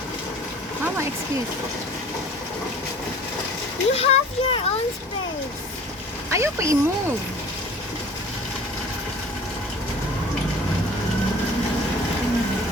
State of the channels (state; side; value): normal; both; correlation 0.46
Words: Mama, excuse. You have your own space. Ayaw pa i-move.